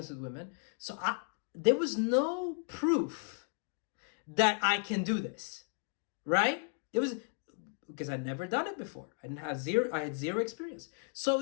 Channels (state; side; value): silent; right; 55 dB below the other